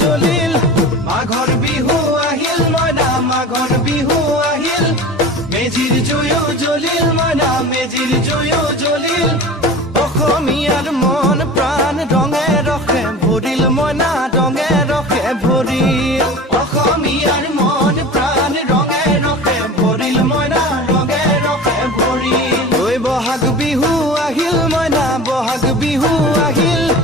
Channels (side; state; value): both; normal; correlation 0.36